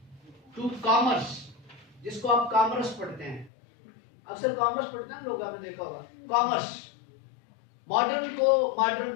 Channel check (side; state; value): right; drops out; at 3.5 s